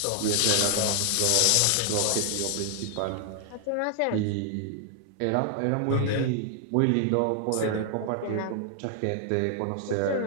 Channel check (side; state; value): both; different; correlation 0.00